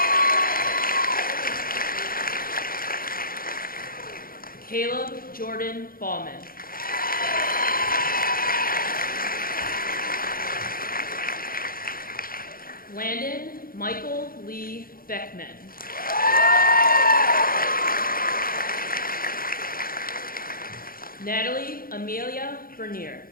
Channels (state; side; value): late; right; 0.42 ms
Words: Caleb Jordan Ballman. Landon Michael Lee Beckman. Natalie Amelia Bernier.